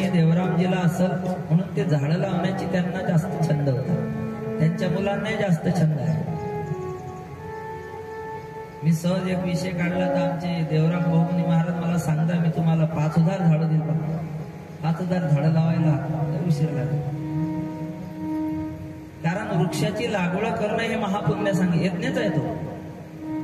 देवरामजीला असेल, म्हणून ते झाडं लावण्याची त्यांना जास्त छंद होता. त्यांच्या मुलांनाही जास्त छंद आहे. मी सहज एक विषय काढला तर आमचे देवराम बहुमनी महाराज मला सांगता, मी तुम्हाला 5000 झाडं दिली. 5000 झाडं लावायला उशीर लागला. कारण वृक्षाची लागवड करणं हे महापुण्य सांग यज्ञच आहे. तो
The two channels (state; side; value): identical; both; correlation 1.00